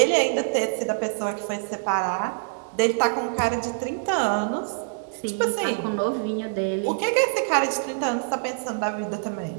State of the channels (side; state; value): left; silent; digital silence